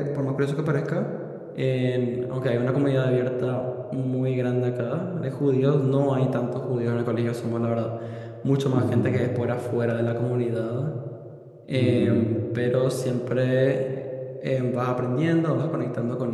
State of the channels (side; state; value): both; identical; correlation 1.00